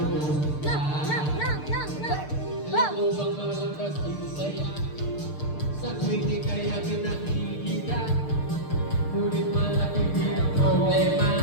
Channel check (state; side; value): late; right; 6.7 ms